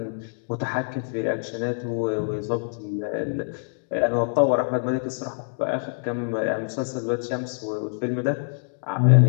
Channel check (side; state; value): right; silent; digital silence